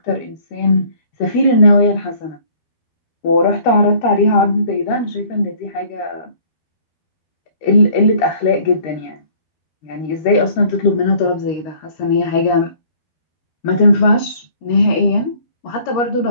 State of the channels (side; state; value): right; late; 13 ms